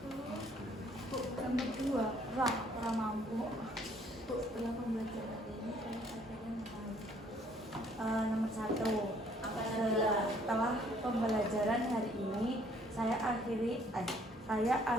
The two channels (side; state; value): both; normal; correlation 0.62